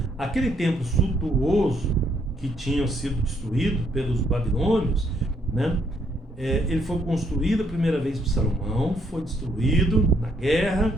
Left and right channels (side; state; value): both; normal; correlation 0.71